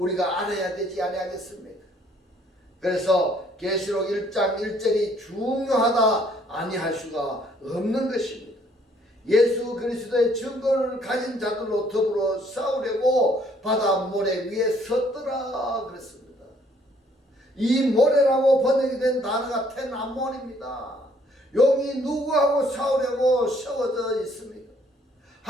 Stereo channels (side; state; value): both; normal; correlation 0.63